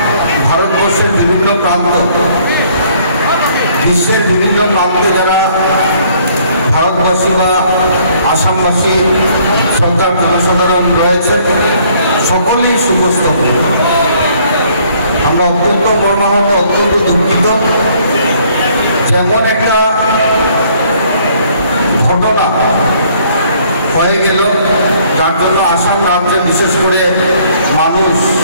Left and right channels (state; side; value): inverted; both; correlation -0.62